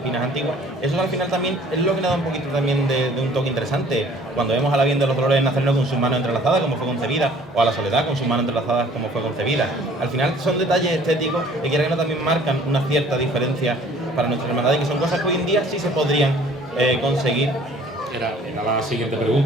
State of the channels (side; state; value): both; normal; correlation 0.54